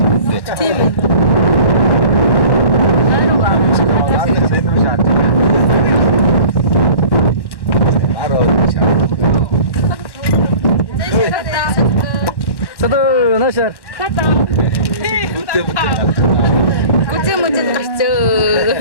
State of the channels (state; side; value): late; right; 1.1 ms